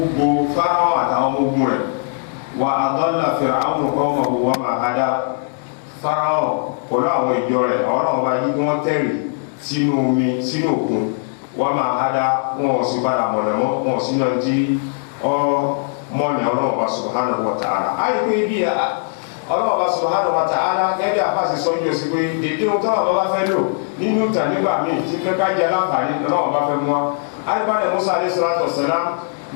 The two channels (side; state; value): right; silent; 66 dB below the other